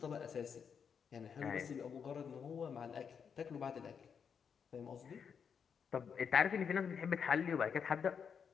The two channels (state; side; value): quieter; right; 6.8 dB